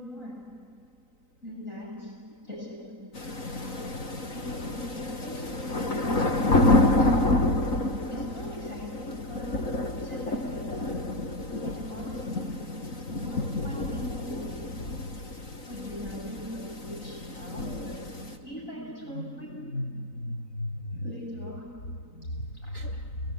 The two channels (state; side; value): late; right; 3.9 ms